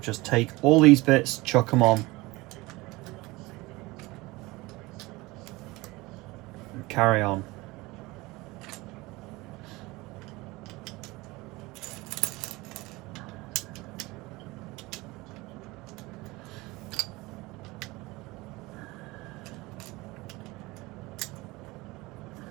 just take all these bits, chuck them on. And carry on.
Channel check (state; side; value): quieter; left; 21.8 dB